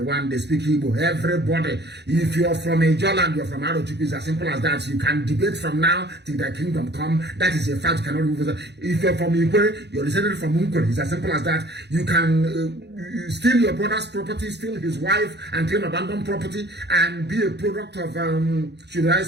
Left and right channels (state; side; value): late; left; 0.49 ms